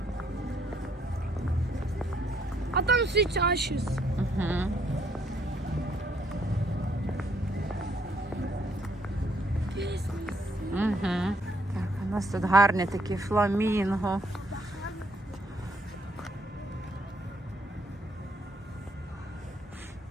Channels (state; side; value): normal; both; correlation 0.69